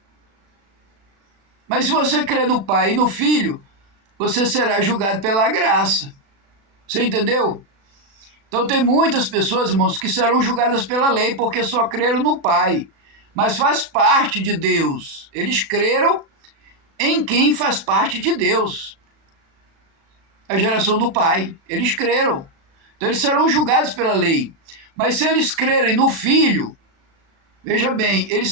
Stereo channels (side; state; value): left; late; 36 ms